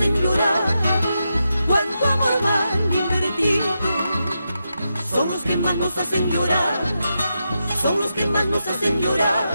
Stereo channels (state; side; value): inverted; both; correlation -0.87